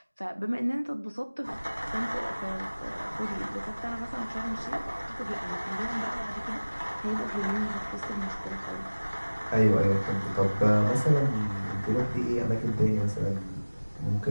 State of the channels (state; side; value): inverted; both; correlation -1.00